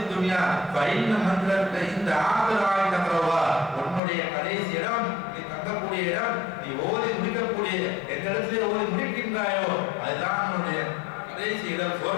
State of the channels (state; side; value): drops out; right; at 4.0 s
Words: துன்யா ஃபைன்ன மந்திரத்த இந்த ஆகராய் தக்கரவா, உன்னுடைய கடைசி இடம், நீ தங்கக்கூடிய இடம், நீ ஓதி முடிக்கக்கூடிய எந்த இடத்திலே ஓதி முடிக்கின்றாயோ அதுதான் உன்னுடைய கடைசி இடம்